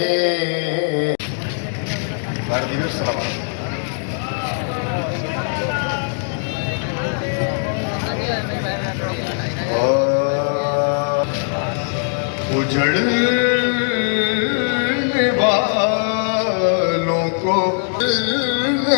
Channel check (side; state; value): right; silent; digital silence